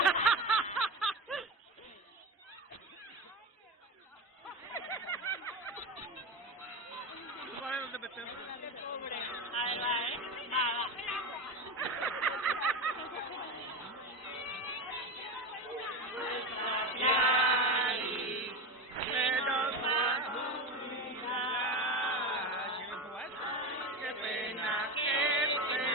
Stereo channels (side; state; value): both; normal; correlation 0.20